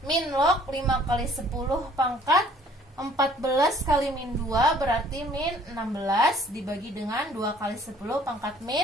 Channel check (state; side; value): normal; both; correlation 0.57